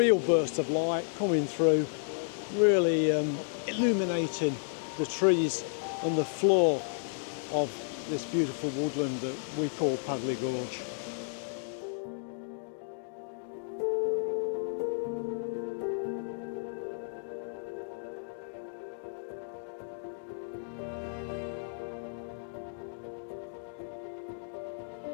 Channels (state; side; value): silent; right; digital silence